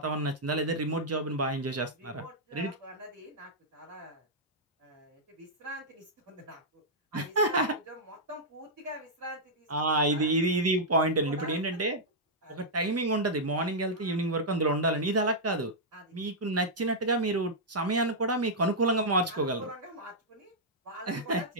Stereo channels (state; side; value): normal; both; correlation -0.08